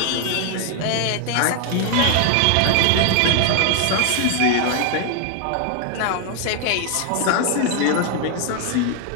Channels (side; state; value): both; different; correlation 0.00